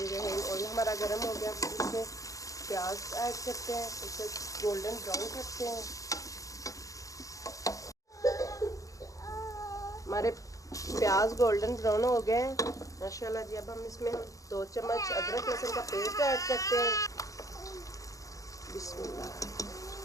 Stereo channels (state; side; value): late; right; 0.16 ms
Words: ऑयल हमारा गर्म हो गया, इसमें प्याज ऐड करते हैं, उसे गोल्डन ब्राउन करते हैं। हमारे प्याज गोल्डन ब्राउन हो गए हैं माशाल्लाह जी। अब हम इसमें 2 चम्मच अदरक लहसुन का पेस्ट ऐड करते हैं। बिस्मिल्लाह।